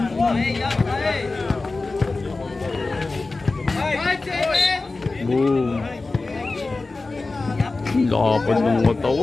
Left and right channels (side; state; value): right; quieter; 3.5 dB